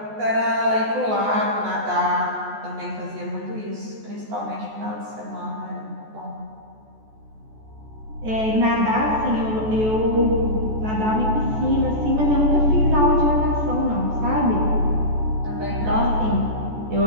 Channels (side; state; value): left; late; 14 ms